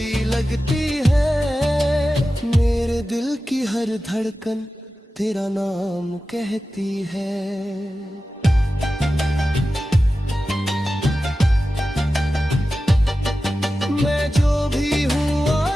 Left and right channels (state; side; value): normal; both; correlation 0.94